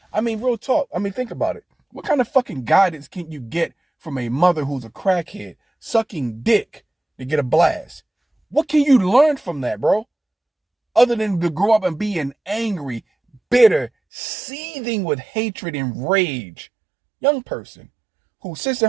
I mean, real talk. I mean, think about it. What kind of fucking guidance can you get from a mother who's a crackhead sucking dick to get a blast? What can you learn from that, bro? Other than to grow up and be an angry, bitter, seething with hatred and rage young person who sits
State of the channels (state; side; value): drops out; left; at 13.9 s